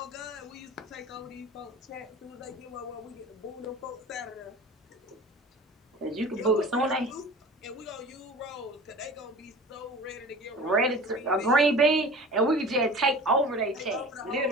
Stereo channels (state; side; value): normal; both; correlation 0.40